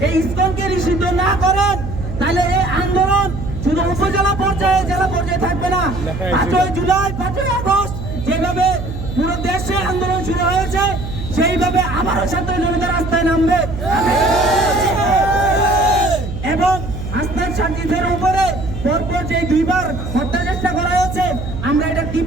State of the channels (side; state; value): right; noise; hum, 7 dB below the sound